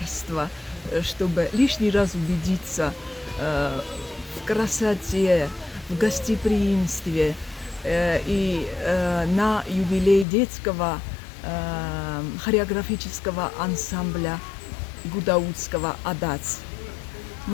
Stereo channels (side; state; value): right; drops out; at 10.2 s